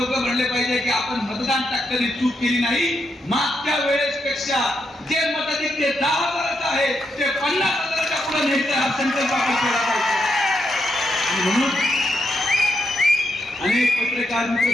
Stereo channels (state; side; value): normal; both; correlation 0.81